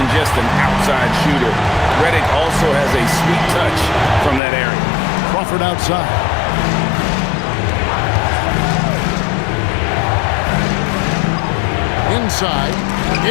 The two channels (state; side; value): drops out; right; at 4.4 s